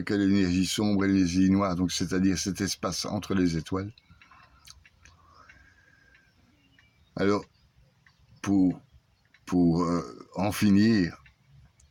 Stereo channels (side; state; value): both; identical; correlation 1.00